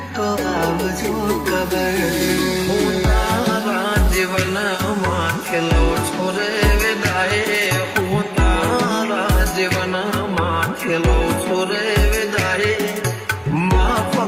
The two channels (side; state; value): both; identical; correlation 1.00